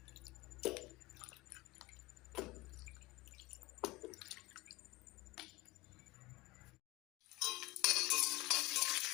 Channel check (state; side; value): quieter; right; 20.6 dB